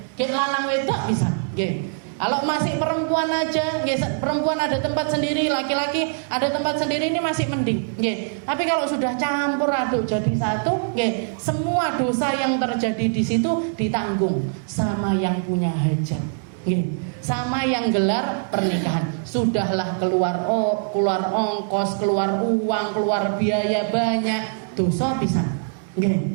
Nggih, lanang wedok bisa, nggih. Kalau masih perempuan aja, nggih, perempuan ada tempat sendiri, laki-laki ada tempat sendiri, ini masih mending, nggih. Tapi kalau sudah campur aduk jadi satu, nggih, semua dosa yang terjadi di situ ditanggung sama yang punya hajat, nggih, sama yang gelar pernikahan. Sudahlah keluar ongkos, keluar uang, keluar biaya banyak, dosa bisa, nggih.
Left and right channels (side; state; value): left; silent; digital silence